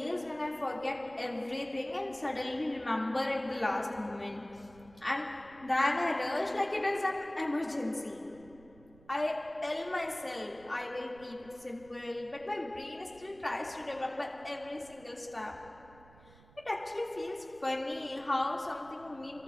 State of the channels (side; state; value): right; noise; rumble, 23 dB below the sound